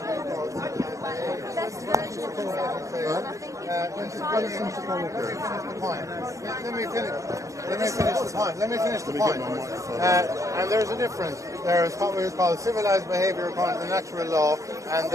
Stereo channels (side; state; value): left; late; 0.15 ms